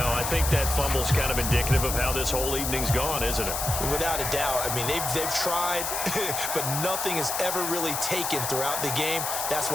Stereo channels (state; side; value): noise; left; hiss, 2 dB below the sound